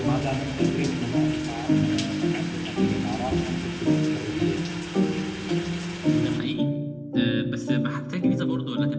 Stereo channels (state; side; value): identical; both; correlation 1.00